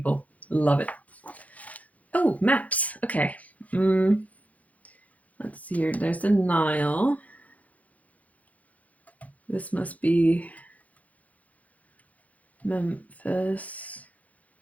Love it. Oh, maps. Okay. Let's see here. There's the Nile. This must be Memphis.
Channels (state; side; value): late; right; 0.072 ms